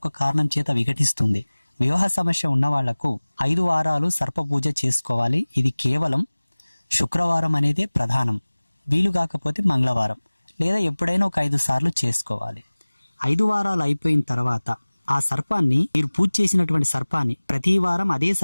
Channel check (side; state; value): both; inverted; correlation -1.00